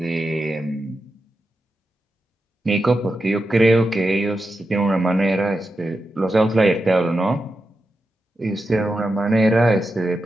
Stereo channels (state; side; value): normal; both; correlation 0.89